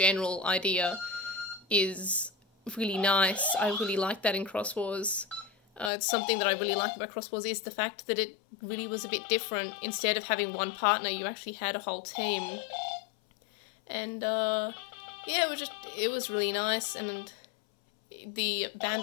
idea is really nice. I really like that in Cross Wars. It's something that I really like about Cross Wars is the fact that it really was a bit different. Instead of having one partner, you actually had a whole team, and yeah, it was really nice. And the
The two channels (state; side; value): drops out; right; at 5.9 s